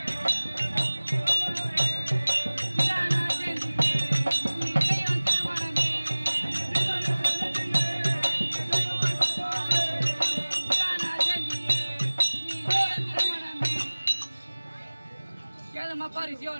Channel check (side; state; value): both; inverted; correlation -1.00